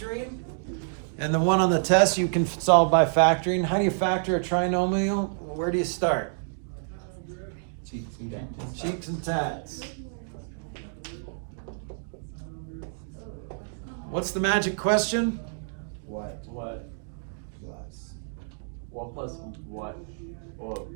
And the one on the test, you can solve by factoring. How do you factor a trinomial? Where do you start? cheeks and tats. Cheeks and tats. What's the magic question? What? What? Plus. 1 plus what? Or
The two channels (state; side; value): silent; left; digital silence